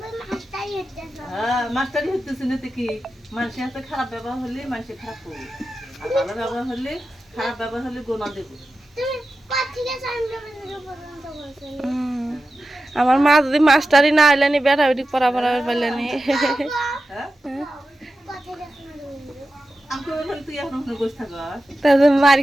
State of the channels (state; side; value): normal; both; correlation 0.92